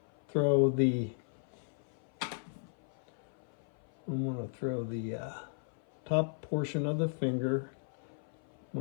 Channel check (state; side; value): silent; right; 54 dB below the other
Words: throw the top portion of the finger. I'm